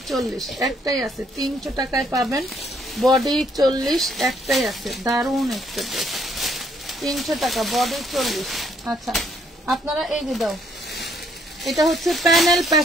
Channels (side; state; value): both; normal; correlation 0.68